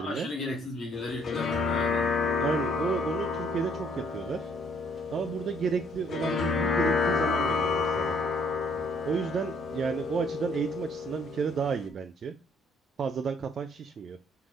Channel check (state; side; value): normal; both; correlation 0.64